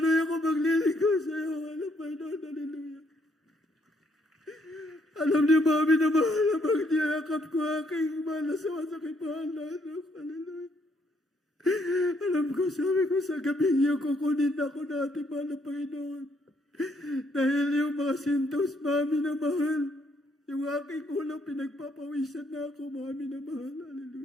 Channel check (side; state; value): both; normal; correlation 0.71